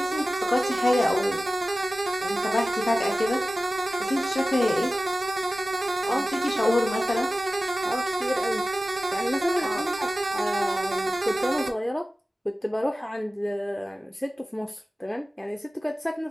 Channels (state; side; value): normal; both; correlation 0.95